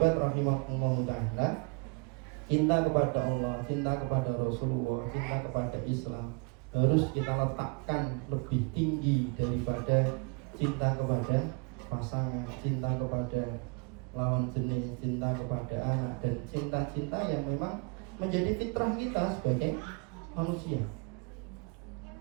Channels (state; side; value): quieter; left; 31.5 dB